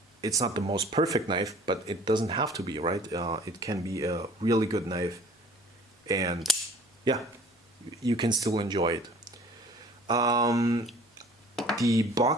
It's not the most perfect knife, but it doesn't have to be, right? It can be a really good knife, and yeah, you can still enjoy it. The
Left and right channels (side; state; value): both; normal; correlation 0.50